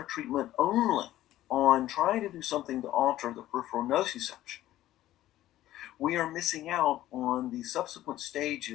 treatment only on trying to do something to alter the peripheral nociception, we are missing out on the subsequent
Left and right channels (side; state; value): right; quieter; 14.3 dB